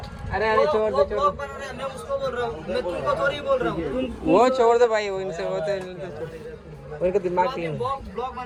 अरे अरे छोड़ दो मैं उसको बोल रहा हूँ, मैं तुमको थोड़ी बोल रहा हूँ. वो छोड़ दो भाई, वो इनसे होते उनका दिमाग नहीं. ब्लॉग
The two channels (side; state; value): both; identical; correlation 1.00